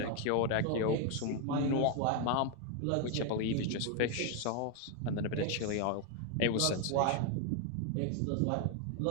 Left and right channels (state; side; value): different; both; correlation 0.01